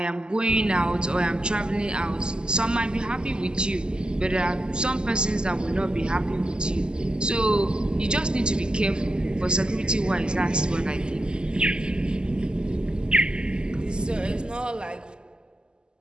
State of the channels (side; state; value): left; late; 0.048 ms